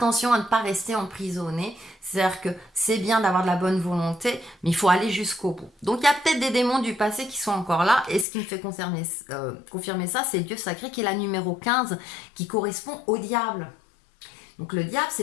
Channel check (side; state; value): right; drops out; at 8.2 s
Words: à ne pas rester emprisonné. C'est-à-dire que c'est bien d'avoir de la bonne volonté, mais il faut aller jusqu'au bout. Donc il y a peut-être des démons du passé qui sont encore là. Et ce qui me fait confirmer ça, c'est Dieu sacré qui est la numéro 15, qui correspond au diable. Donc le diable,